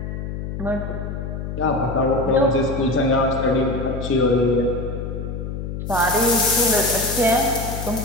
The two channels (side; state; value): left; noise; hum, 6 dB below the sound